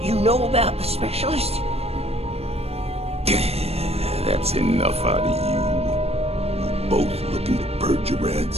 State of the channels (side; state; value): left; late; 0.29 ms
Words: you know about the specialist? That's enough out of you. You both looking to purge your